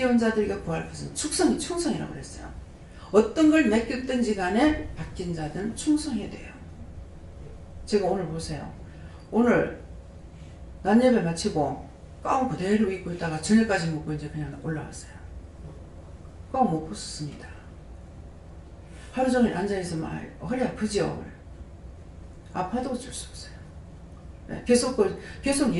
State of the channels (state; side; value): identical; both; correlation 1.00